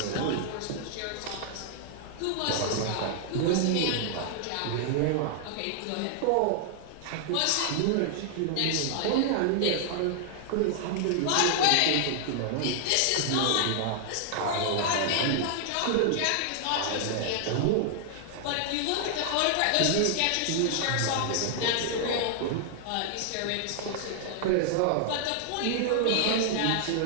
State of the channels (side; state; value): both; different; correlation 0.00